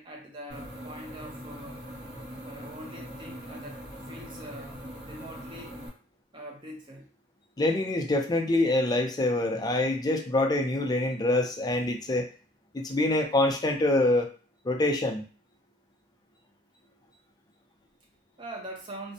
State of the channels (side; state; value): both; normal; correlation 0.58